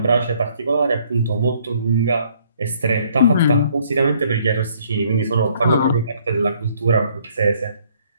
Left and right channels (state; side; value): inverted; both; correlation -0.64